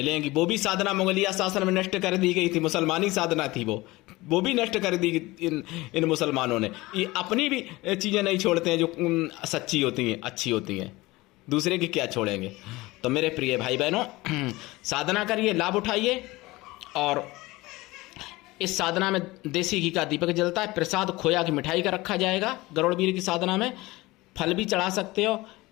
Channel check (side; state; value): right; quieter; 20.5 dB